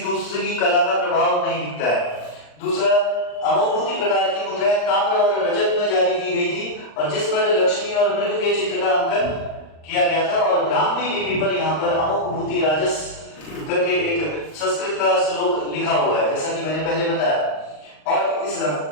दूसरी कला का प्रभाव नहीं दिखता है। दूसरा, अमोघभूति प्रकार की मुद्राएं ताम्र और रजत में जारी की गई थी और जिस पर लक्ष्मी और मृग के चित्र का अंकन किया गया था, और ब्राह्मी लिपि पर यहाँ पर अमोघभूति राजस करके एक संस्कृत का श्लोक लिखा हुआ है, जैसा कि मैंने पहले बताया। और इस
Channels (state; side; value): late; right; 39 ms